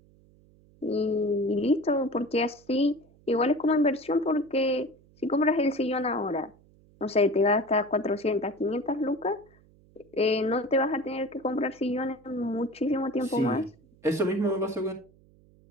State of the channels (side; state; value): right; noise; hum, 29 dB below the sound